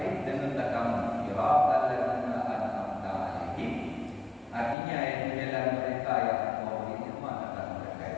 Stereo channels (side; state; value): right; drops out; at 4.8 s